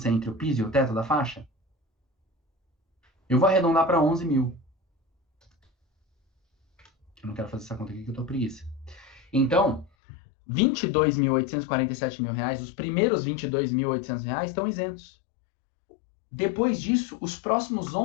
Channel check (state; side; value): drops out; right; at 9.9 s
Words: entre o piso e o teto da faixa? Eu vou arredondar para 11 mil. Eu não quero fazer essa conta aqui que eu tô preguiça. Então, 22.847 mil reais, os primeiros 22.800 reais estão isentos. Depois disso, os próximos